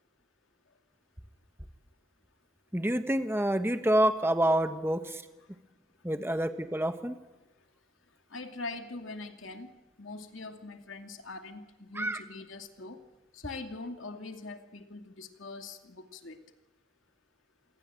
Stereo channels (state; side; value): normal; both; correlation 0.81